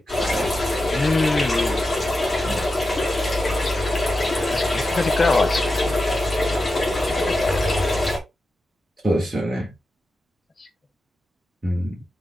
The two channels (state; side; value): normal; both; correlation 0.90